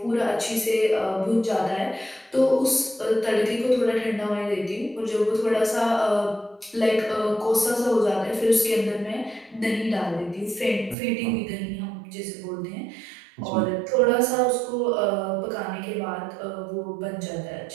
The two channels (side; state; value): left; drops out; at 11.0 s